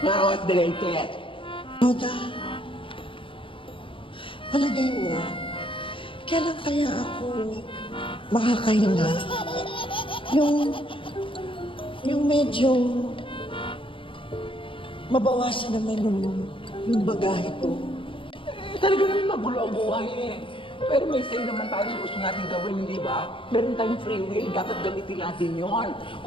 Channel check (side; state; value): right; late; 0.25 ms